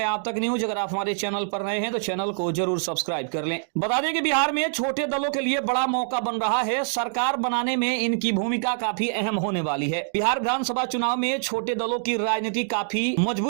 हैं आप तक न्यूज। अगर आप हमारे चैनल पर नए हैं तो चैनल को जरूर सब्सक्राइब कर लें। बता दें कि बिहार में छोटे दलों के लिए बड़ा मौका बन रहा है, सरकार बनाने में इनकी भूमिका काफी अहम होने वाली है। बिहार विधानसभा चुनाव में छोटे दलों की राजनीति काफी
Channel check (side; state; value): left; silent; digital silence